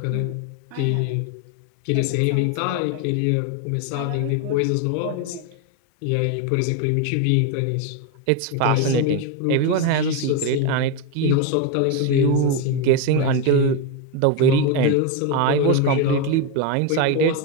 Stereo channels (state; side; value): different; both; correlation 0.02